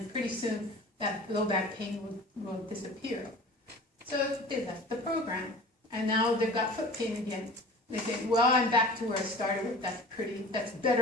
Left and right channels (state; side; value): normal; both; correlation 0.41